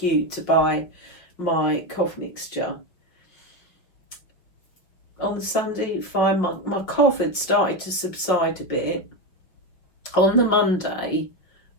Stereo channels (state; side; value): late; right; 5.6 ms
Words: to buy my cough mixture, on the Sunday, fine. My cough had started to subside a bit. On the Monday,